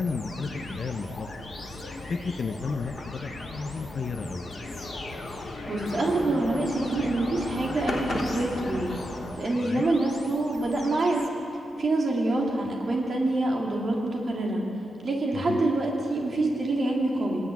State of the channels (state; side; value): normal; both; correlation 0.87